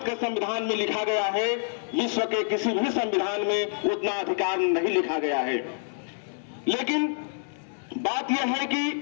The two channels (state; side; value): silent; right; 60 dB below the other